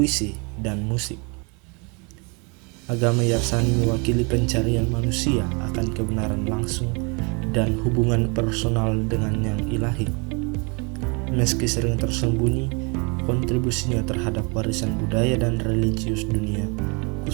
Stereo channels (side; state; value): left; quieter; 32.0 dB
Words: dan musik. Agama Yarsani mewakili pencarian manusia akan kebenaran langsung dan hubungan personal dengan yang ilahi. Meski sering tersembunyi, kontribusinya terhadap warisan budaya dan religius dunia,